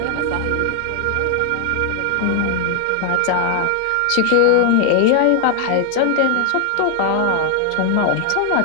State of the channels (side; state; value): both; different; correlation 0.00